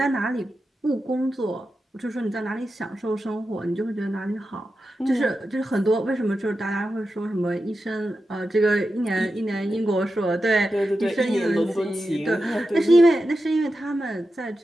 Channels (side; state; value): both; normal; correlation 0.90